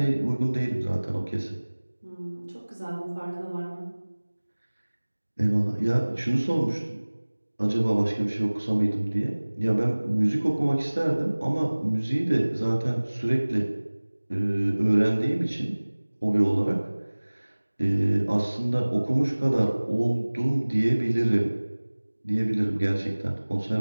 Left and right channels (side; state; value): both; inverted; correlation -1.00